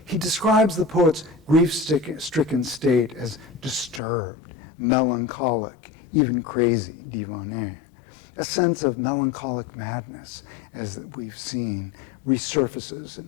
He describes the poet's grief-stricken state as disturbed, melancholic, even crazy, divané. A sense of melancholic madness, as we've seen, resurfaces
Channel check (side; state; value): right; drops out; at 4.0 s